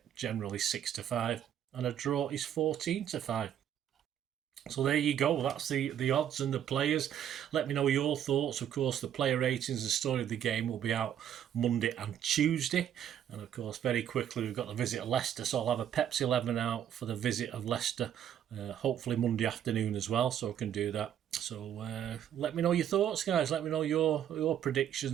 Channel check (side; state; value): left; quieter; 9.9 dB